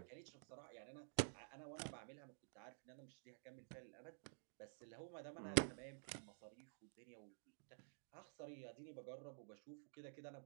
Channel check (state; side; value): silent; left; digital silence